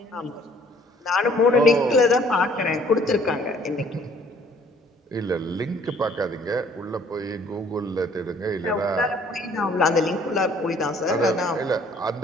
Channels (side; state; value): both; normal; correlation 0.58